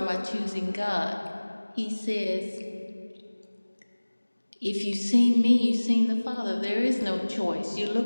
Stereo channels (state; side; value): inverted; both; correlation -1.00